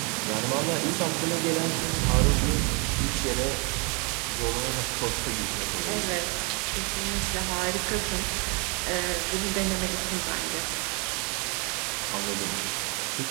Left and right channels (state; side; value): quieter; left; 32.7 dB